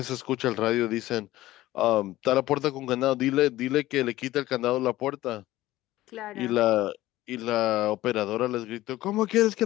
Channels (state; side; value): quieter; right; 16.2 dB